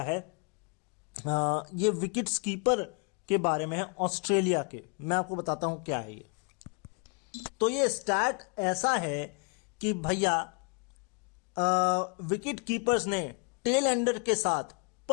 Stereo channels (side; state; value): right; quieter; 36.8 dB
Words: है। ये विकेट्स कीपर के बारे में है ऑस्ट्रेलिया के। मैं आपको बताता हूं क्या है ये। तो ये स्टैट ऐसा है कि भैया विकेट कीपर्स ने टेल एंडर के साथ